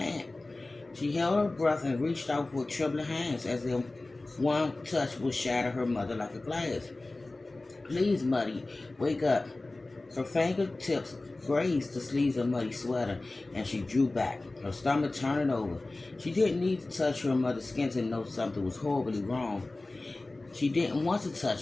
She held her breath and reached out with trembling hands as if one touch would shatter her mother like a glass. Please, Muddy, wake up. Her fingertips grazed the sleeves of Muddy's sweater, and she drew back, her stomach turning over. She didn't need to touch her mother's skin to know something was horribly wrong. She didn't want to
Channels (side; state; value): right; quieter; 3.0 dB